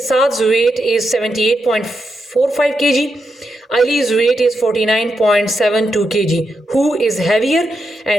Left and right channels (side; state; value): both; normal; correlation 0.84